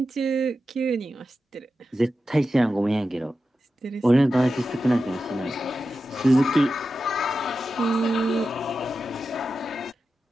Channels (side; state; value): both; normal; correlation 0.91